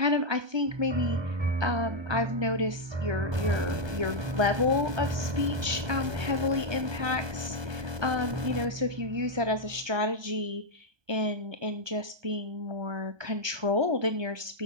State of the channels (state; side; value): late; left; 1.3 ms